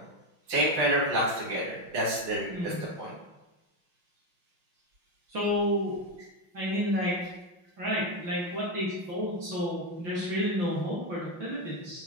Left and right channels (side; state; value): left; late; 5.8 ms